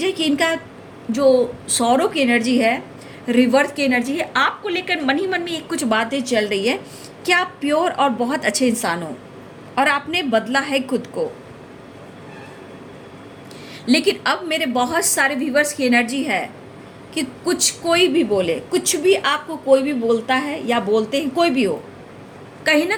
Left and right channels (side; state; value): both; identical; correlation 1.00